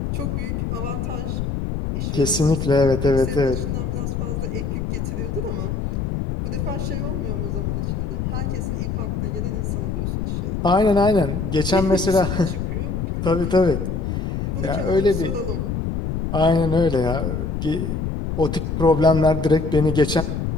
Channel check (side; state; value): left; noise; rumble, 2 dB below the sound